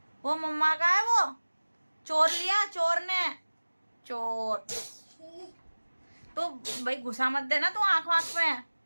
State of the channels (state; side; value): inverted; both; correlation -1.00